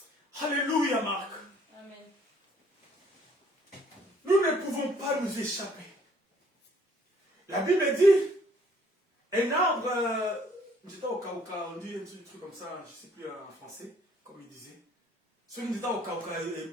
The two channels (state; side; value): normal; both; correlation 0.61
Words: Alléluia, Marc. Amen. Nous ne pouvons pas nous échapper. La Bible dit, un arbre, j'étais au Cauca, on dit un truc comme ça, je ne sais plus en français, comme il disait. Celui qui était au Cauca, et